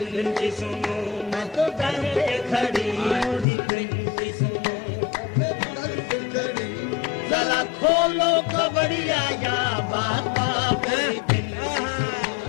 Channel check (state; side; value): drops out; right; at 3.5 s